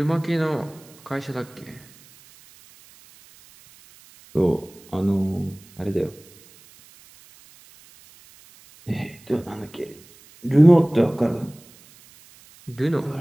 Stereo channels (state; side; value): noise; right; hiss, 25 dB below the sound